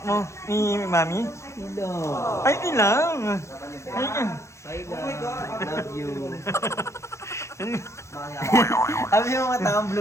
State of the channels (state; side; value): late; right; 0.14 ms